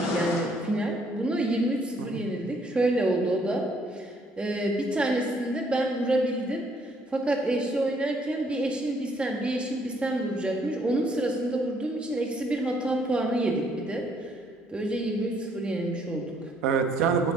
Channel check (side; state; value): both; normal; correlation 0.67